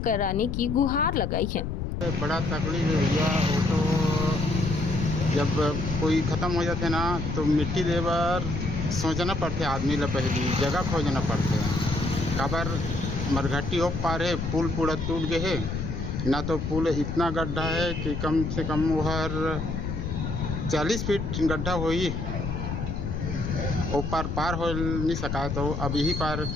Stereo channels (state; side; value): noise; left; rumble, 3 dB below the sound